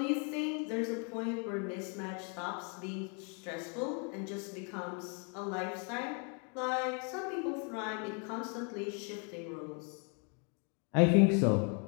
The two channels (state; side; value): quieter; right; 37.2 dB